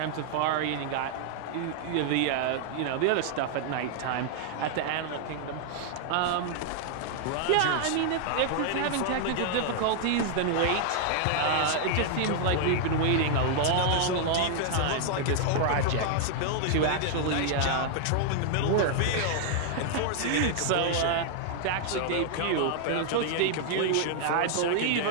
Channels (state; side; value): different; both; correlation 0.00